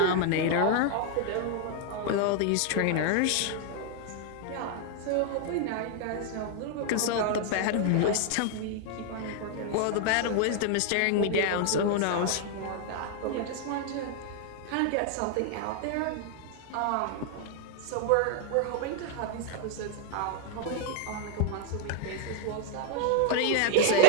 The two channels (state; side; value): different; both; correlation 0.00